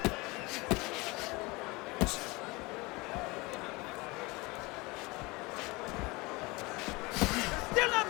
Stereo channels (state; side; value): quieter; right; 24.2 dB